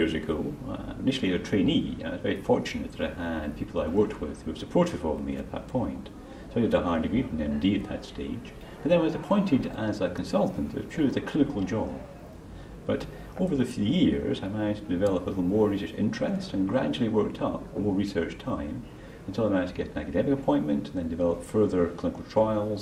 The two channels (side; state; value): both; identical; correlation 1.00